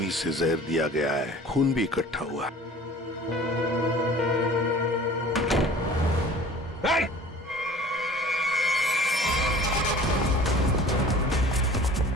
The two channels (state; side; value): normal; both; correlation 0.45